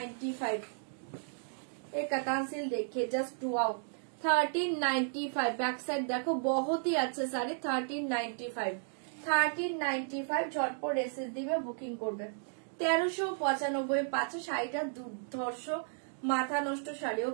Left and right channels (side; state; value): left; silent; digital silence